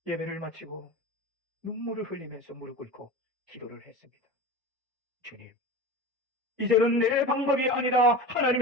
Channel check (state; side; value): normal; both; correlation 0.31